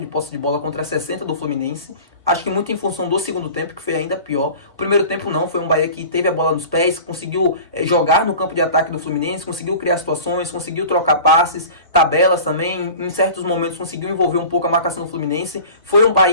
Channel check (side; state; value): both; inverted; correlation -0.39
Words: de posse de bola contra 60% do Fluminense. Acho que muito em função do segundo tempo, que foi ainda pior. O primeiro tempo não, foi um Bahia que teve a bola nos pés, conseguiu jogar no campo de ataque do Fluminense, conseguiu criar situações, conseguiu trocar passes, tabelas também. Em certos momentos conseguiu envolver um pouco a marcação do Fluminense. Foi um